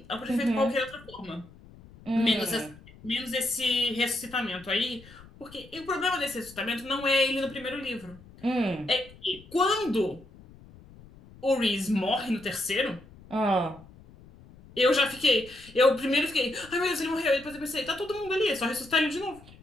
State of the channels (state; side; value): noise; left; rumble, 22 dB below the sound